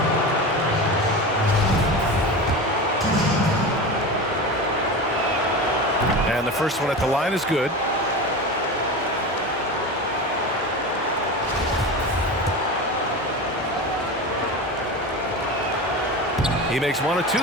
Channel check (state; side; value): normal; both; correlation 0.26